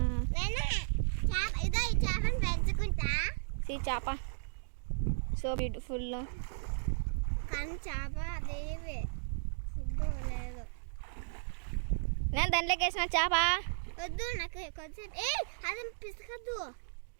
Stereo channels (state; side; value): silent; left; digital silence